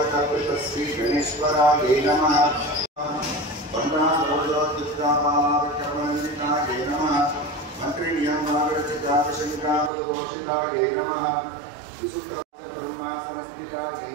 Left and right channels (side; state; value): left; drops out; at 9.9 s